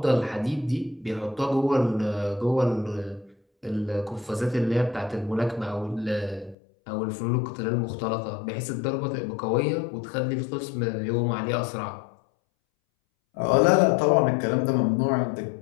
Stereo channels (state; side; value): drops out; right; at 6.6 s